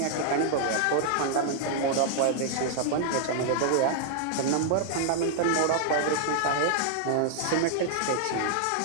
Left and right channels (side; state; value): both; different; correlation -0.01